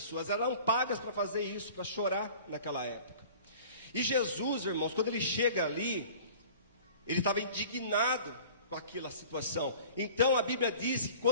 eram pagas para fazer isso, para chorar naquela época. E Jesus, irmãos, quando ele chega ali, ele estava indignado com aquela situação. Então a Bíblia diz que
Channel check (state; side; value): inverted; both; correlation -0.45